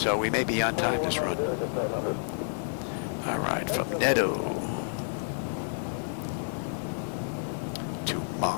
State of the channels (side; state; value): right; silent; digital silence